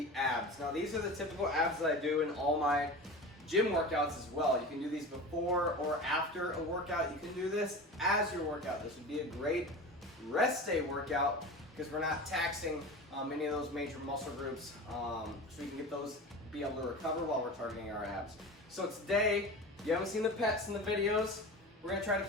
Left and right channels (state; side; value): normal; both; correlation 0.32